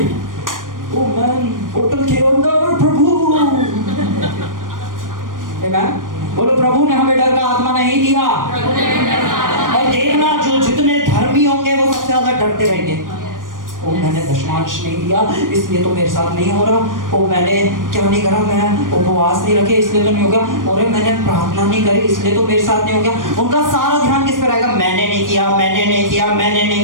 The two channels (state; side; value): late; left; 0.90 ms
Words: ओ मैन, होटल के अंदर प्रभु, आमेन, बोलो प्रभु ने हमें डर का आत्मा नहीं दिया। और देखना, जो जितने धर्मी होंगे वो सबसे ज्यादा डरते रहेंगे। ओ मैंने दशमांश नहीं दिया इसलिए तो मेरे साथ नहीं हो रहा। ओ मैंने क्या नहीं करा, मैं उपवास नहीं रखे इसलिए तो नहीं होगा। और मैंने प्रार्थना नहीं करी इसलिए तो मेरे साथ नहीं हो गया। उनका सारा ध्यान किस पर रहेगा? मैंने नहीं किया, मैंने नहीं किया, मैंने